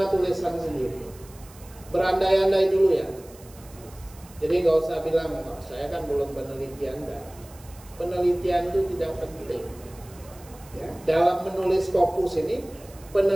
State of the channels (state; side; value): noise; right; hiss, 23 dB below the sound